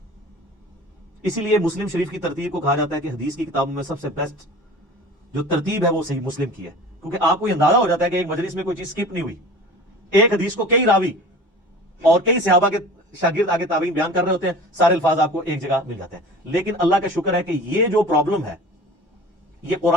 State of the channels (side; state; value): both; normal; correlation 0.40